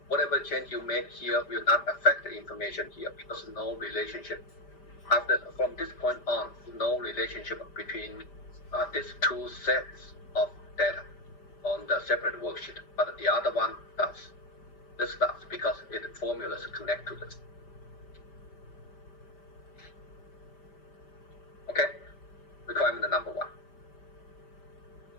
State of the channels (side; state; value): right; late; 5.1 ms